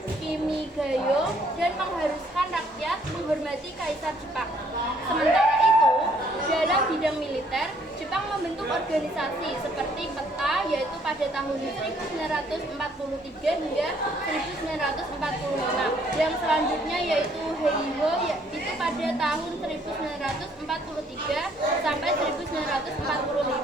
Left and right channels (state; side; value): normal; both; correlation 0.64